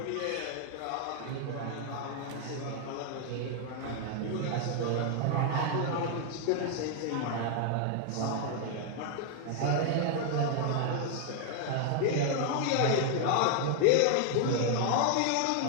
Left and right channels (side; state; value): both; different; correlation 0.00